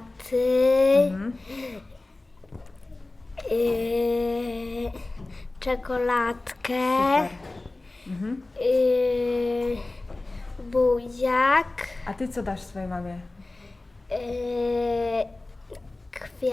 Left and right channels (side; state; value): right; quieter; 3.0 dB